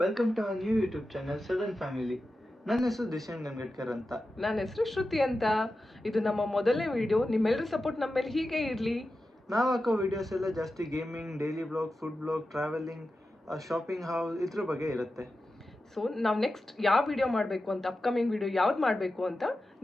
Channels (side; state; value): both; normal; correlation 0.92